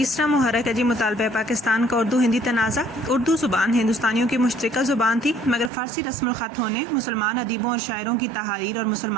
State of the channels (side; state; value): left; drops out; at 5.7 s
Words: محرک ہے جی مطالبہ پاکستان کا اردو ہندی تنازع۔ اردو زبان ہندوستانیوں کی مشترکہ زبان تھی، مگر فارسی رسم الخط ہونے، مسلمان ادیبوں اور شاعروں کی تحاریر اور